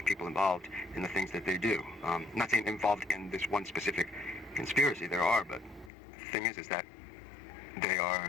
people involved in the things that they do. I'm not saying involved in this one specific conspiracy, there are, but the thing is that they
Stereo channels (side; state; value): right; drops out; at 5.9 s